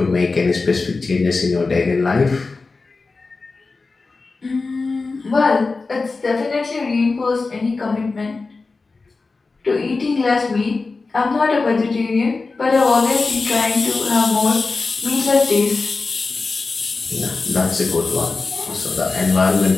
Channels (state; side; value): quieter; right; 3.9 dB